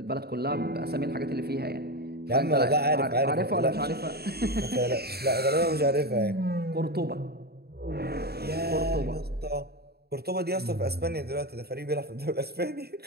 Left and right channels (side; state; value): left; late; 0.46 ms